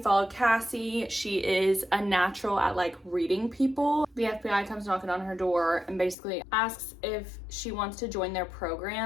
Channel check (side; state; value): right; drops out; at 6.2 s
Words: follow Cassie. She is a natural at like reading people. The FBI comes knocking on her door and basically asks if she wants to join their